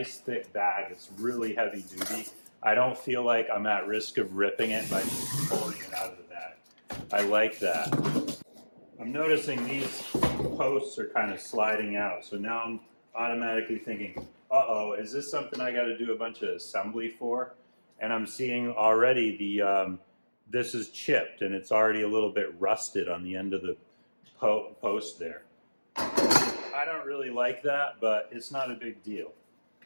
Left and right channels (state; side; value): inverted; both; correlation -1.00